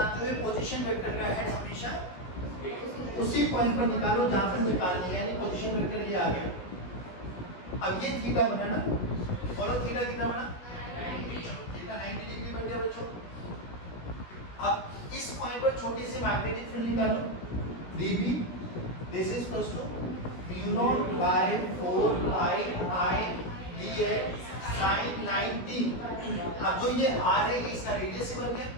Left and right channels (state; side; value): late; right; 17 ms